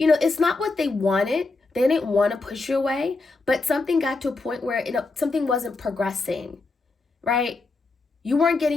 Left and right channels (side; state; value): right; quieter; 3.6 dB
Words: not what they wanted, They didn't want to push you away, but something got to a point where something wasn't progressing, right? You weren't